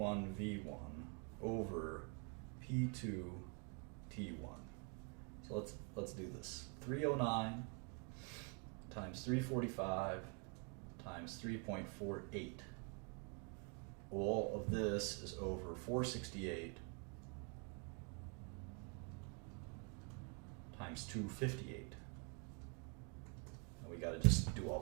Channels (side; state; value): left; quieter; 37.3 dB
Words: V1 over P2 T1. So let's do this. 309 times 345 times 3.48. All of this is over 468 times 258. And we got to just do all